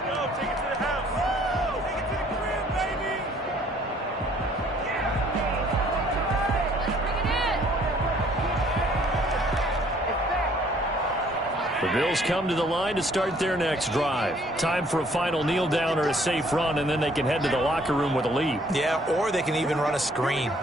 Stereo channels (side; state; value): both; normal; correlation 0.60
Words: The Bills come to the line to start their next drive. Time for a final kneel down or a safe run, and then they can head to the locker room with a lead. Yeah, or they can even run a screen.